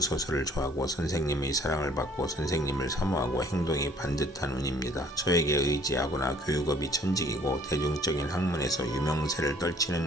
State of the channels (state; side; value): normal; both; correlation 0.57